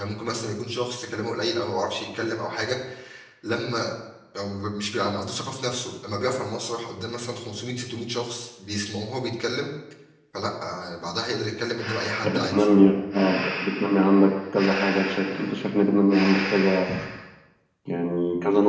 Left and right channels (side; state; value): both; identical; correlation 1.00